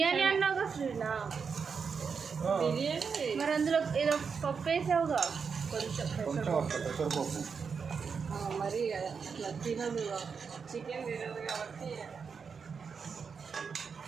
అన్నావుగా శ్రీనా? బిర్యానీ మరి అందులో ఏదో పప్పు వేసావుగా కొంచెం. కొంచెం పెసరపప్పు. మరి అట్లా తినదు, చికెన్ తినదు కాబట్టి.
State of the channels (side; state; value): left; quieter; 5.8 dB